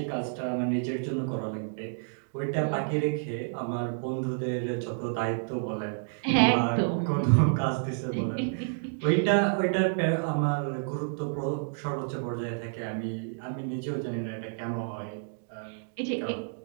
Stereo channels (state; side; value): silent; left; digital silence